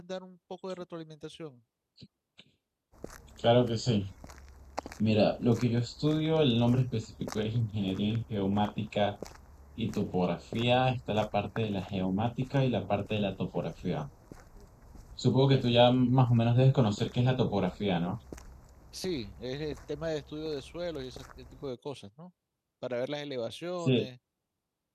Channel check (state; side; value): identical; both; correlation 1.00